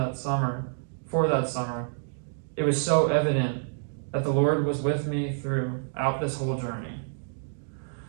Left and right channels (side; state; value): left; silent; digital silence